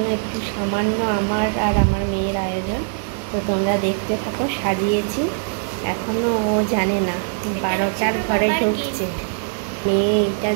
একটু সামান্য আমার আর আমার মেয়ের আয়োজন। তো তোমরা দেখতে থাকো, সাজিয়েছি। এখনও ও জানে না, 12টার ঘরে ঢুকছে। মেয়ে এইটা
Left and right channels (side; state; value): left; silent; digital silence